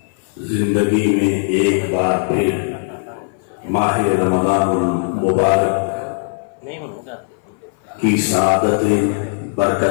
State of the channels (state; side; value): silent; right; 58 dB below the other